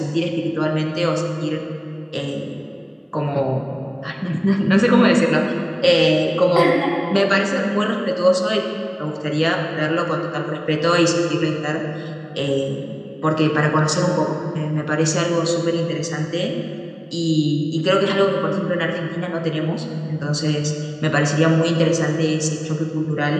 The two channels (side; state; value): both; identical; correlation 1.00